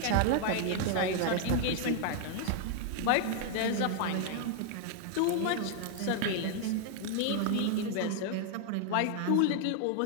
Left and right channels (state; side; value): different; both; correlation 0.00